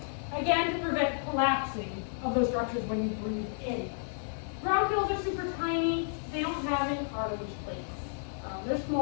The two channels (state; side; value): silent; right; digital silence